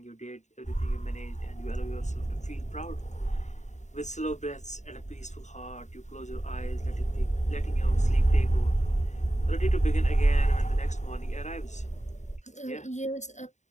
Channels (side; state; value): right; late; 0.34 ms